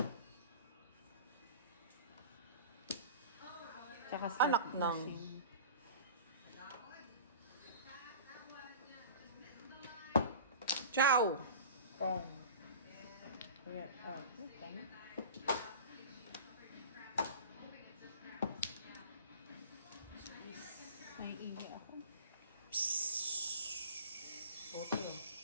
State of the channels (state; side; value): inverted; both; correlation -0.38